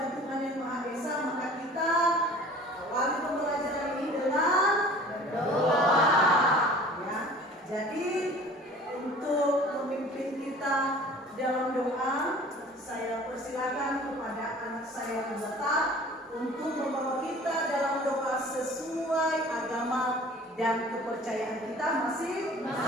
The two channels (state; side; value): normal; both; correlation 0.46